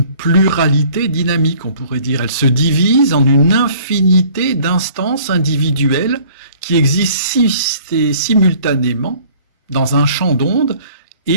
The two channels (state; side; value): inverted; both; correlation -0.54